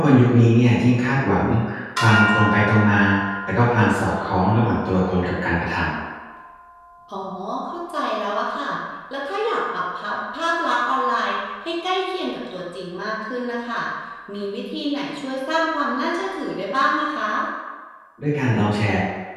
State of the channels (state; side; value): identical; both; correlation 1.00